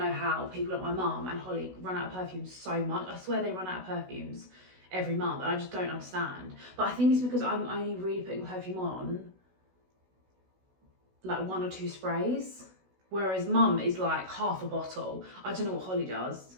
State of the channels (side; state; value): left; late; 16 ms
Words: how people like my mum and Holly run out of perfumes so much. I swear they run out of perfumes every month, and I just don't understand. But I think it's because I'm only really putting perfume on like 1 or 2 sprays, whereas mum is like half a bottle. I don't know what Holly does.